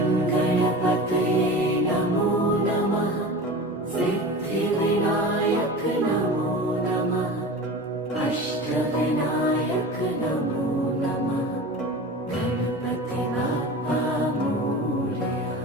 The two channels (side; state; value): both; normal; correlation 0.33